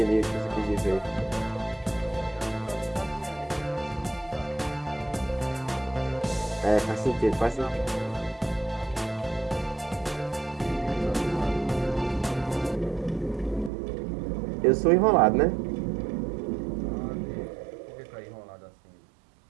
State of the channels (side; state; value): left; drops out; at 13.7 s